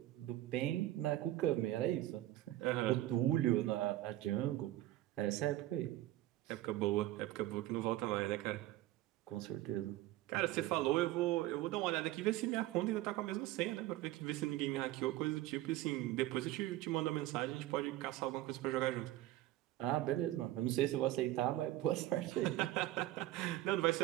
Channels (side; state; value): left; quieter; 15.7 dB